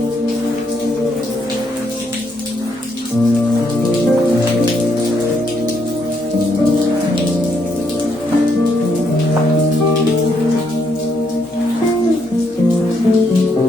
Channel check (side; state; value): both; normal; correlation 0.75